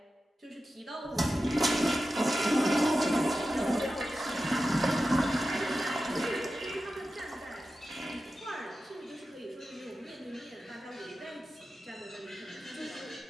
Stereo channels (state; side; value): normal; both; correlation 0.93